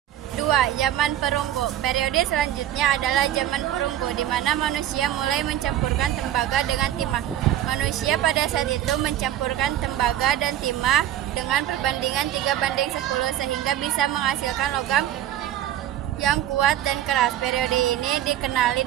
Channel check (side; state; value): left; quieter; 12.1 dB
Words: 2. Zaman perunggu. Periode selanjutnya adalah zaman perunggu, di mana manusia mulai mencampurkan tembaga dengan timah. Manusia pada saat itu mencampurkan tembaga dan timah dengan perbandingan 3:10 sehingga bisa menghasilkan logam yang kuat dan keras. Periode ini dikenali